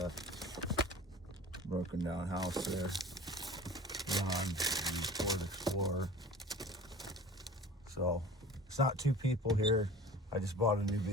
broken down house there on the Ford Explorer. So it's not two people here. I just bought a new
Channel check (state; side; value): normal; both; correlation 0.42